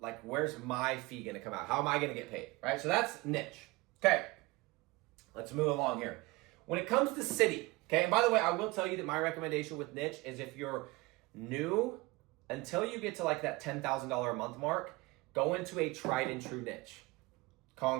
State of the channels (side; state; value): left; quieter; 22.4 dB